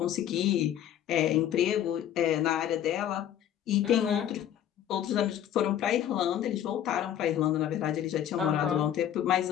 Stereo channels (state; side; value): quieter; right; 10.6 dB